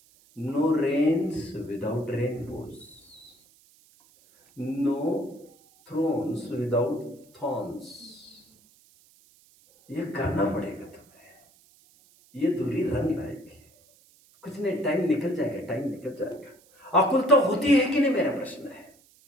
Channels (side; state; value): right; noise; hiss, 29 dB below the sound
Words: no rains without rainbows, no thrones without thorns. ये करना पड़ेगा तुम्हें, ये दूरी रंग लाएगी। कुछ नहीं, टाइम निकल जाएगा, टाइम निकल जाएगा। आकुल तो होती है कि नहीं, मेरा प्रश्न है।